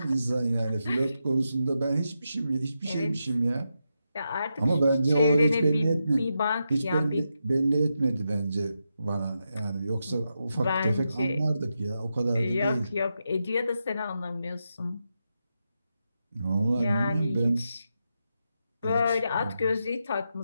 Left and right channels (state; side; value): inverted; both; correlation -0.86